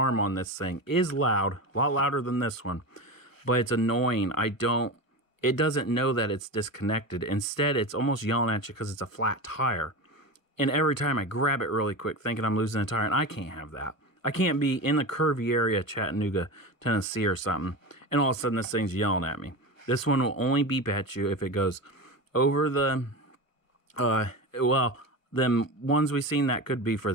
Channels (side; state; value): right; late; 1.1 ms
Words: on this thing is loud, a lot louder than this one. But it's annoying. It doesn't know that it's disconnected. Instead, it's almost yelling at you because it's a flat tire. And every time I grab it really quick, thinking I'm losing a tire, and I can't have that. I can't be in the curvy area, Chattanooga, Tennessee or something, and all of a sudden this thing's yelling at me. This one will only beep at you if it goes over the, well, them ones we've seen, that could be for